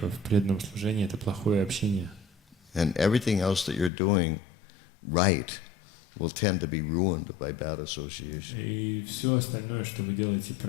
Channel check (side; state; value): right; drops out; at 3.9 s